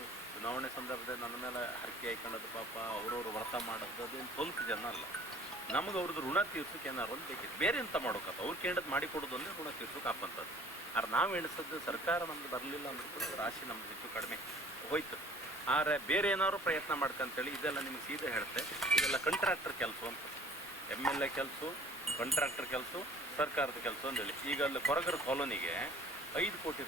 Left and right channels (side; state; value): both; normal; correlation 0.51